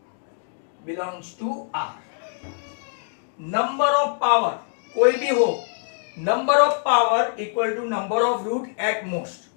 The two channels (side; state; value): right; silent; 63 dB below the other